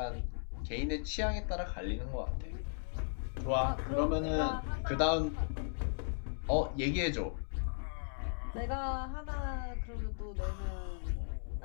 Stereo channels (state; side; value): silent; right; digital silence